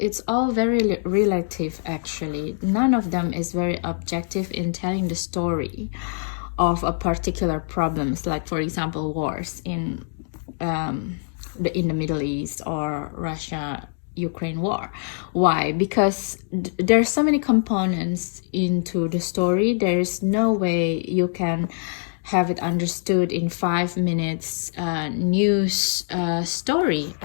all very relative, actually. None of them is very objective in telling the story of a particular problems, like, for example, wars in the Middle East, or Russia-Ukraine war. Why? Because there's so many components into the story. There's no way you can have it understood in 5 minutes news story,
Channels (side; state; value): right; silent; digital silence